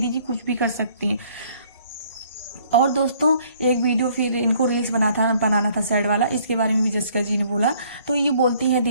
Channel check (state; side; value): inverted; both; correlation -0.61